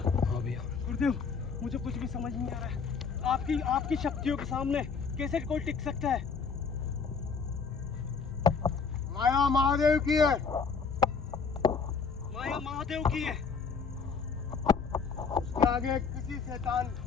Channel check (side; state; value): right; quieter; 5.4 dB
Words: भैया। गुरुदेव मुझे कुछ भी समझ नहीं आ रहा है। आपकी शक्तियों के सामने कैसे कोई टिक सकता है? माया महादेव की है। माया महादेव की है। उसके आगे किसी शैतान